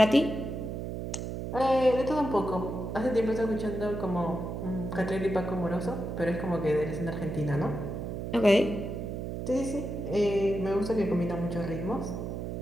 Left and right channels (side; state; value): right; noise; hum, 5 dB below the sound